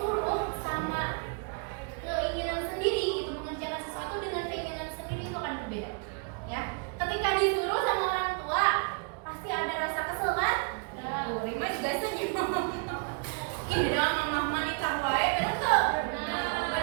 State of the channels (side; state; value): left; quieter; 36.1 dB